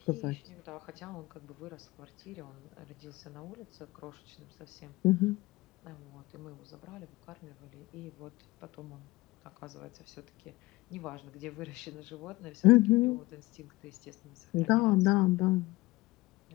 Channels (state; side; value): quieter; right; 20.4 dB